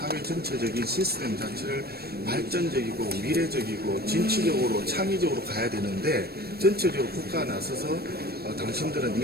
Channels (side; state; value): left; late; 0.46 ms